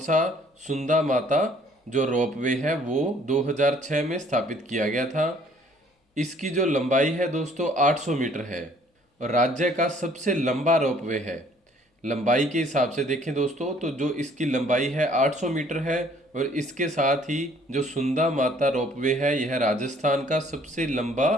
सुंदा माता जो रोपवे है वो 2006 में स्थापित किया गया था। इसकी जो लंबाई है दोस्तों 800 मीटर है और राज्य का सबसे लंबा रोपवे है। लंबाई के हिसाब से देखें दोस्तों तो जो इसकी लंबाई है 800 मीटर है और इसके साथ ही जो सुंदा माता रोपवे है यह राजस्थान का सबसे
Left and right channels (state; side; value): normal; both; correlation 0.59